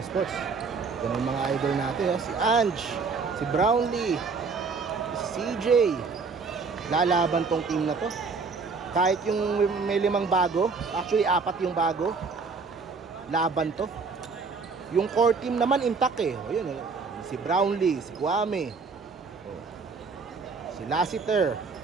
Sports. Yan ang mga idol natin, oh. Si Ange, si Brownlee, si CJ. Lalaban tong team na to. Kahit yung may 5 bago, actually 4 yung bago, laban to. Yung core team naman intact eh. O yun, si Brownlee, si Kwame, si Lassiter,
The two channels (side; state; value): left; quieter; 4.8 dB